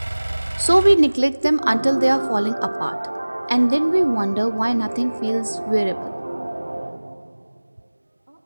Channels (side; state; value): both; inverted; correlation -1.00